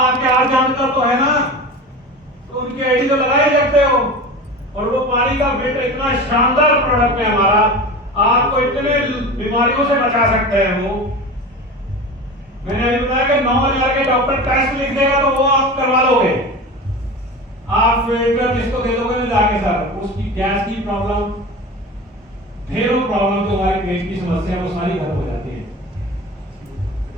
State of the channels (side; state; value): both; normal; correlation 0.31